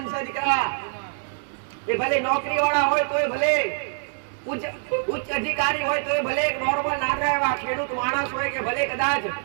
છે દીકરા. એ ભલે નોકરી વાળા હોય તોય ભલે, ઉચ્ચ અધિકારી હોય તોય ભલે, એક નોર્મલ નાના એવા ખેડૂત માણસ હોય કે ભલે કદાચ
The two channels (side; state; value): left; silent; digital silence